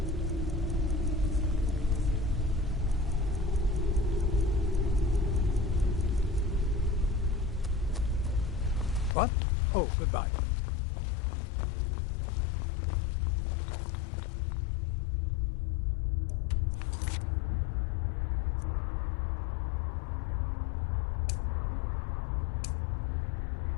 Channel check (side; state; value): right; drops out; at 9.2 s